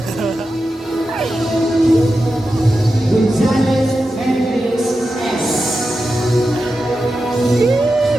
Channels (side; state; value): both; normal; correlation 0.91